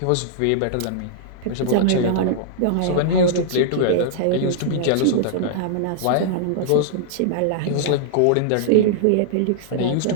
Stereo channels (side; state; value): both; different; correlation -0.01